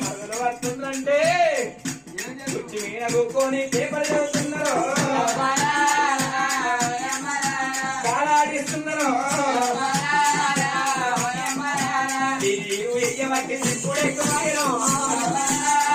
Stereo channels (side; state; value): both; identical; correlation 1.00